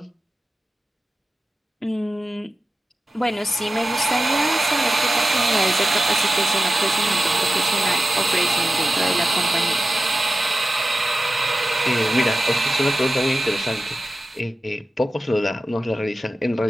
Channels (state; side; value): normal; both; correlation 0.93